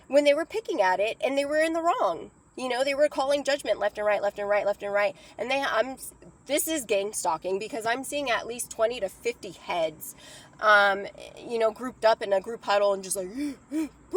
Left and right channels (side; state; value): both; identical; correlation 1.00